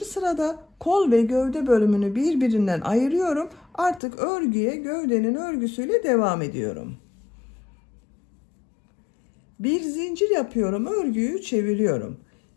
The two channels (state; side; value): drops out; right; at 4.0 s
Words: kol ve gövde bölümünü birbirinden ayırıyorum. Artık örgüye gövdenin örgüsüyle devam ediyorum. Bir zincir yapıyorum, örgüyü çeviriyorum.